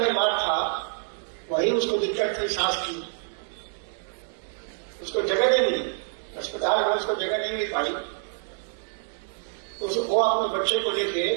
था, वही उसको दिक्कत थी सांस की, उसको जगह नहीं मिली, अस्पताल में उसको जगह नहीं मिल पाई, तो वो अपने बच्चे को लेके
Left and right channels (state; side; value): silent; left; digital silence